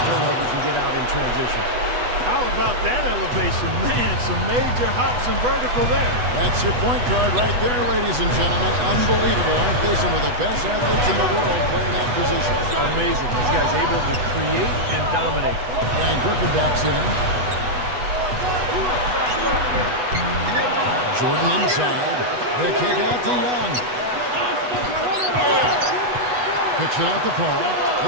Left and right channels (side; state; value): left; late; 8.1 ms